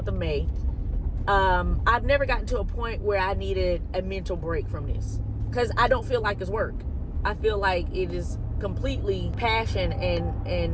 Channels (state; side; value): identical; both; correlation 1.00